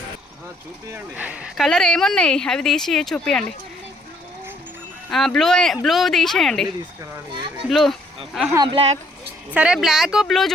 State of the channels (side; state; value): both; normal; correlation 0.66